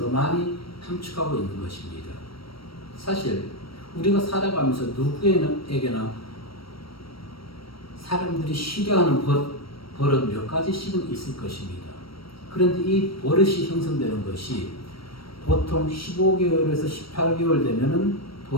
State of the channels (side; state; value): right; late; 0.75 ms